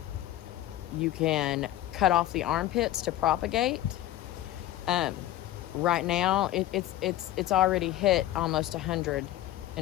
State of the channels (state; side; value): quieter; right; 14.0 dB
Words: you can cut off the armpits to propagate. Right now, it's already hit almost 100